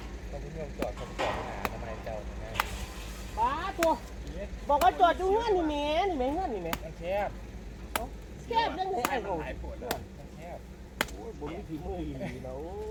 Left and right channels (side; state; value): both; identical; correlation 1.00